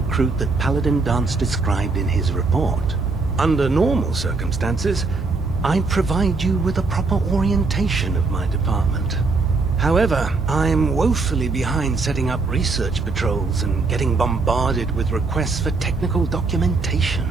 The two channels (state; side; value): quieter; left; 3.9 dB